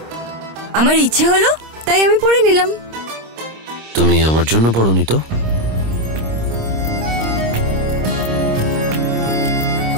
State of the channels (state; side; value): late; left; 26 ms